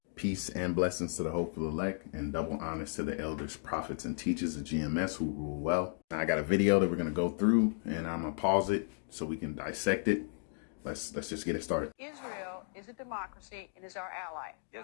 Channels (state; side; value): silent; right; digital silence